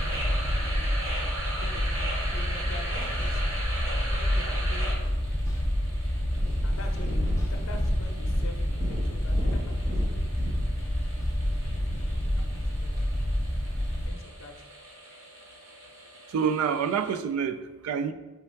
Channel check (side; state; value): both; normal; correlation 0.80